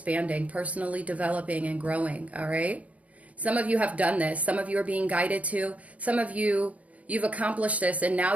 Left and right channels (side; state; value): left; late; 0.066 ms